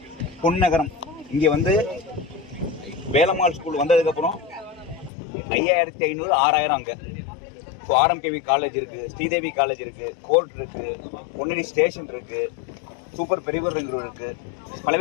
பொன்னகரம். இங்கே வந்து வேலம்மாள் ஸ்கூல் வந்ததுக்கப்புறம் 5500 6000 அங்கே. ஸோ ஆர்எம்கேவி காலேஜ் இருக்கு, ஸ்ரீதேவி காலேஜ் இருக்கு, கோர்ட் இருக்கு, பொன்னேரி ஸ்டேஷன் இருக்கு, சூப்பர் பெரியவர் இருக்கு,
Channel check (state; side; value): drops out; right; at 5.1 s